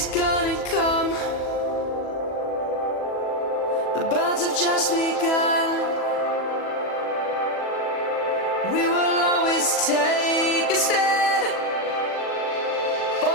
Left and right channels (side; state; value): right; late; 40 ms